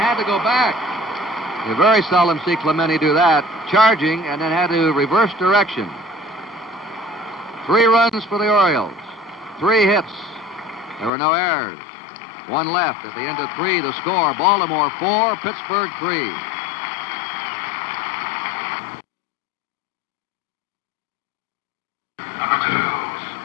to go back. You very seldom see Clemente do that. Charging and then had to reverse direction. 3 runs for the Orioles. 3 hits. There were no errors. 1 left. At the end of 3, the score, Baltimore 4, Pittsburgh 3.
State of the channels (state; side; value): drops out; right; at 11.1 s